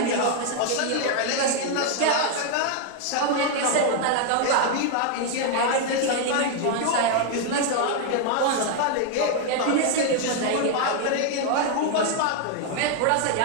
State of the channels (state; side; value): different; both; correlation 0.00